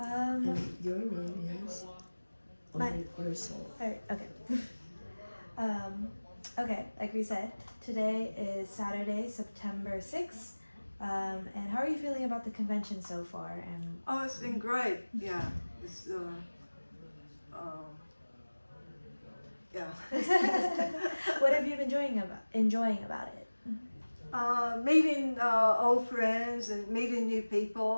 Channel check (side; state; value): both; inverted; correlation -1.00